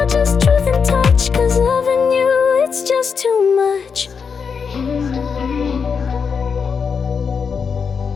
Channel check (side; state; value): right; quieter; 6.0 dB